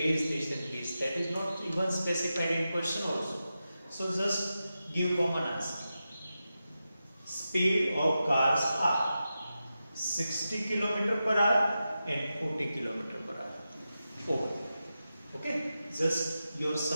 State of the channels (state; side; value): inverted; both; correlation -0.91